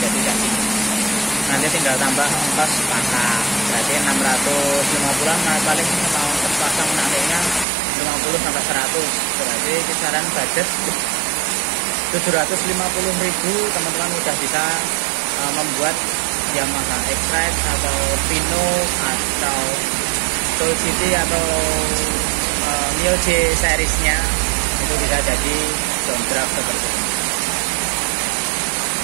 gaji. Nanti tinggal tambah ongkos pasang, berarti 650-an. Nah, paling mau ongkos pasang nantinya 50 sampai 100, berarti kisaran budget 750.000. Teman-teman udah bisa membuat Yamaha X-Rite atau Pino atau Soul City atau MIOG seriesnya, itu bisa jadi downdraft seperti ini.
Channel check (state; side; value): drops out; left; at 7.7 s